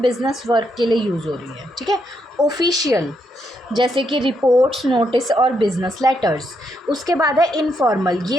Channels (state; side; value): normal; both; correlation 0.78